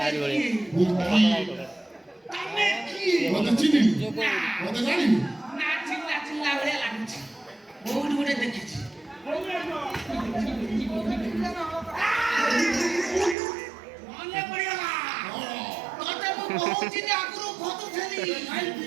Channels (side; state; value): left; drops out; at 13.4 s